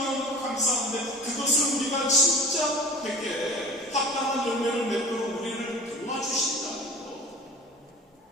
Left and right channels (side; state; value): both; normal; correlation 0.41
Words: 감사한데 그것을 우리가 진짜 되게 합당한 열매를 맺도록 우리를 도와주신다는 것,